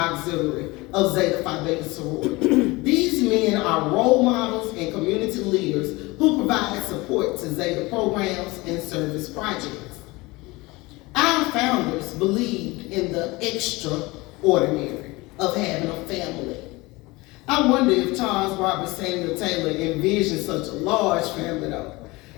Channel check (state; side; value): quieter; right; 22.6 dB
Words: of Zeta Phi Beta Sorority. These men are role models and community leaders who provide support to Zeta programs and service projects. Our founders believed in the extraordinary of having a family. I wonder if Charles Robert Samuel Taylor envisioned such a large family though.